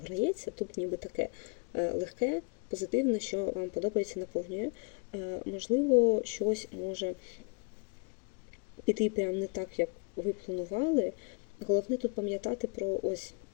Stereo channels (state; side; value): quieter; right; 36.5 dB